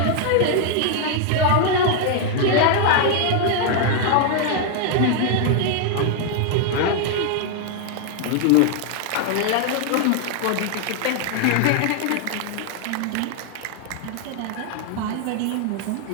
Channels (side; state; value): both; different; correlation 0.00